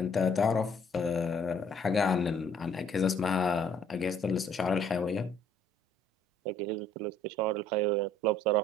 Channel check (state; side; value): normal; both; correlation 0.60